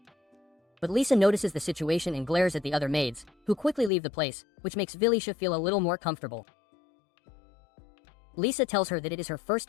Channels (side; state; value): right; drops out; at 3.9 s